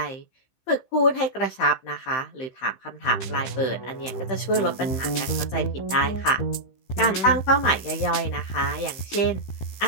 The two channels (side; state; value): right; late; 15 ms